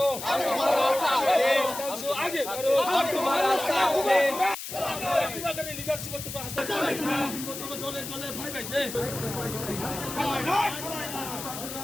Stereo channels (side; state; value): left; noise; hiss, 8 dB below the sound